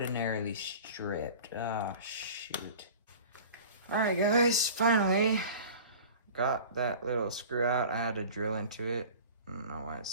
stripped. Oh, shoot. Alright guys, finally got that little screw out. I had to drill into it. I don't know why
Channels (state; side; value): inverted; both; correlation -0.41